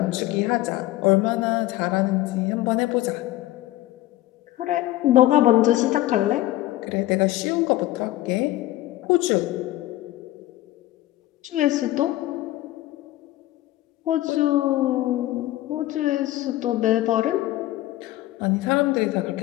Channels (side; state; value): right; quieter; 15.9 dB